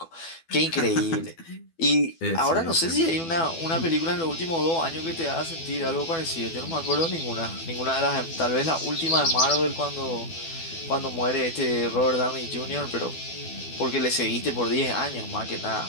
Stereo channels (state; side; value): late; right; 12 ms